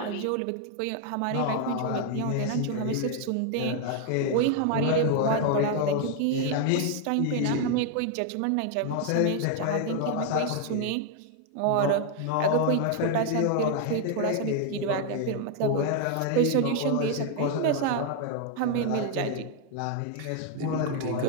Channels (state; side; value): different; both; correlation 0.00